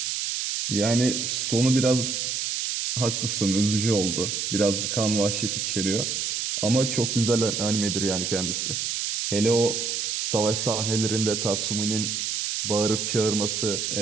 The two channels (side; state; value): right; noise; hiss, 1 dB below the sound